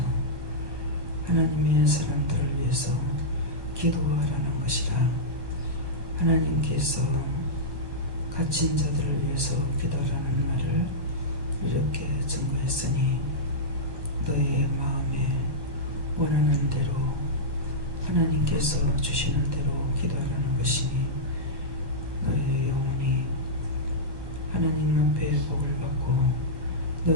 하나님의 사람들을 위해서 기도하라는 것이라. 하나님께서 갇힌 자들을 위해서 기도하라는 말을 이렇게 증거했으니 너의 마음에 원하는 대로 하나님께서 주시는 대로 기도하라는 것이니 너의 영혼이 하나님 앞에 복을 받고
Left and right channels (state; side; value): late; left; 1.2 ms